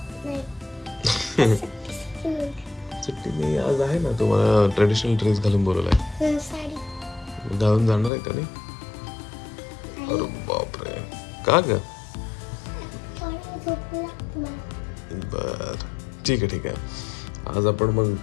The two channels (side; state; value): right; drops out; at 8.1 s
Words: सुट्टी नाही आज आहे ना. तुम्हाला ट्रेडिशनल ड्रेस घालून बोलवलाय. साडी घालून जाणार आहे का नाही? अरे बापरे, का ग? बर ठीक आहे ठीक आहे.